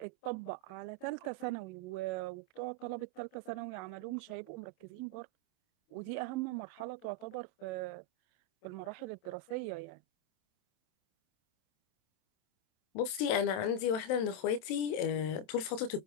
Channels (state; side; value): late; right; 27 ms